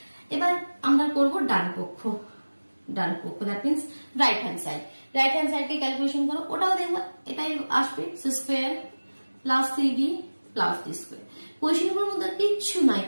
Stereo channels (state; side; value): inverted; both; correlation -1.00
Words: এবার আমরা করব ডান পক্ষ, that means right hand side. Right hand side কে ক্যালকুলেশন করো, ওটাও দেখবো এটাই আসবে, c square plus C D plus D square. কোয়েশ্চেনগুলোর মধ্যে কিচ্ছু